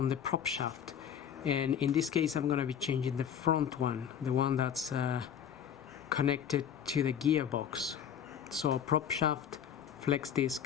the prop shaft. And in this case I'm gonna be changing the front one, the one that's connected to the gearbox. So prop shaft, flex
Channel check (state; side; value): quieter; right; 8.7 dB